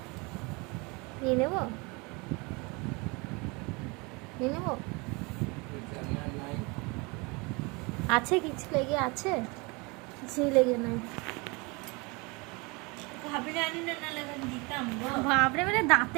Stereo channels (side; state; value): left; quieter; 27.8 dB